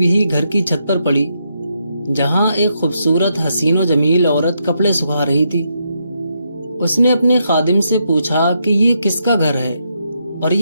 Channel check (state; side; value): inverted; both; correlation -0.80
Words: ہی گھر کی چھت پر پڑی، جہاں ایک خوبصورت حسین و جمیل عورت کپڑے سکھا رہی تھی۔ اس نے اپنے خادم سے پوچھا کہ یہ کس کا گھر ہے اور